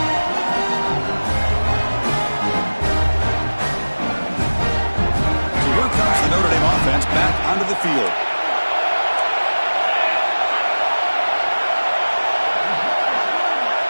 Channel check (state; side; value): inverted; both; correlation -1.00